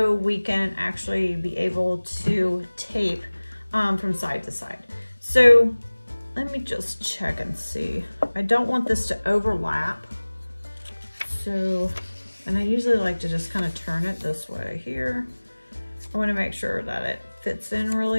we can actually be able to tape from side to side. So let me just check and see. I don't want this to overlap. So, and I usually like to just kind of turn it this way here. I want to make sure that it fits in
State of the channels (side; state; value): both; inverted; correlation -1.00